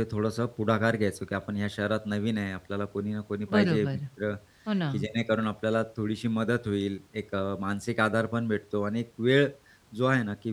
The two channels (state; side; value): identical; both; correlation 1.00